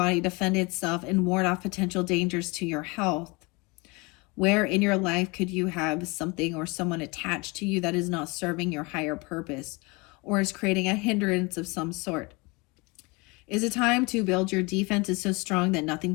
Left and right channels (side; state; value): right; quieter; 26.5 dB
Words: defend itself and ward off potential dangers to your health. Where in your life could you have something or someone attached to you that is not serving your higher purpose or is creating a hindrance of some sort? Is it time to build your defenses so strong that